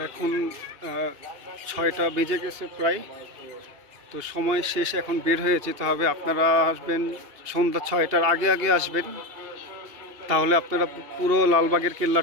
এখন 6টা বেজে গেছে প্রায়। তো সময় শেষ, এখন বের হয়ে যেতে হবে। আপনারা আসবেন সন্ধ্যা 6টার আগে আগে আসবেন, তাহলে আপনারা পুরো লালবাগের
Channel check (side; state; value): left; late; 2.9 ms